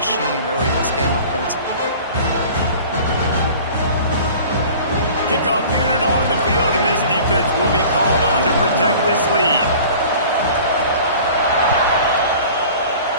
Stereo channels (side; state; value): both; inverted; correlation -0.44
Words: early in this game offensively. Kickoff unit on the field, and this defense will be called on to protect this lead.